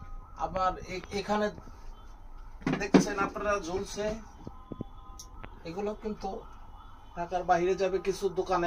আবার এখানে দেখছেন আপনারা ঝুলছে, এগুলো কিন্তু ঢাকার বাইরে যাবে। কিছু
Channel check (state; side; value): identical; both; correlation 1.00